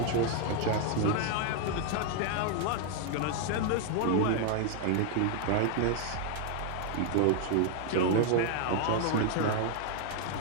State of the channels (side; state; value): both; different; correlation 0.00